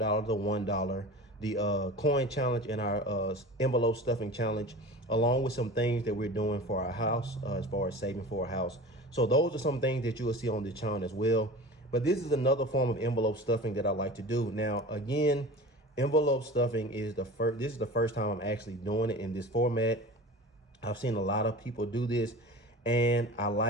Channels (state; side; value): normal; both; correlation 0.35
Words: the $1, the coin challenge, and our envelope stuffing challenge, along with some things that we're doing for our house as far as saving for a house. So those are some things that you will see on the channel as well. But this is another form of envelope stuffing that I like to do. Now, again, envelope stuffing is this is the first time I'm actually doing it in this format. I've seen a lot of people do this, and I